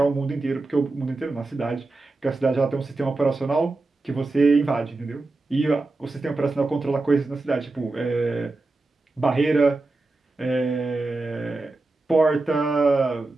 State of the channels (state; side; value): quieter; left; 3.3 dB